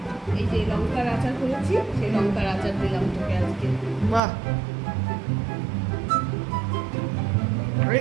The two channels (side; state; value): left; drops out; at 4.2 s